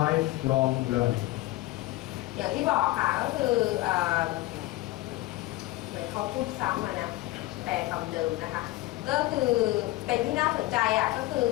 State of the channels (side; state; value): right; quieter; 18.3 dB